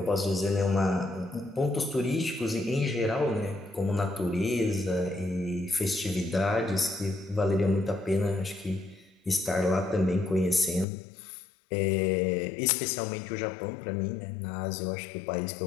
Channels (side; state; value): right; drops out; at 10.9 s